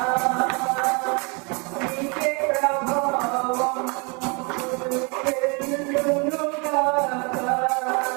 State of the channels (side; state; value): left; quieter; 32.1 dB